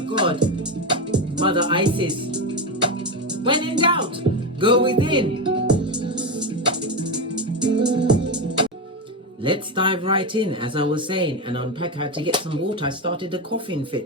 God, Mother Isis. When in doubt, go within. Let's dive right in, as I was saying, and unpack how to get some water. I started a coughing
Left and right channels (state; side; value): normal; both; correlation 0.14